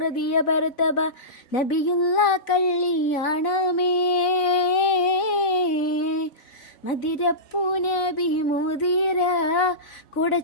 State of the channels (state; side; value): late; right; 4.0 ms